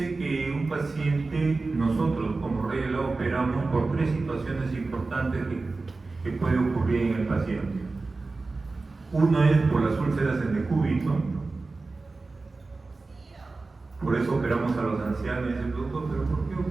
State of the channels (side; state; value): left; quieter; 3.6 dB